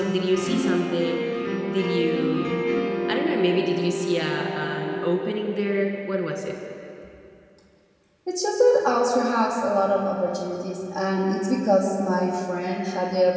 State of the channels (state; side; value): identical; both; correlation 1.00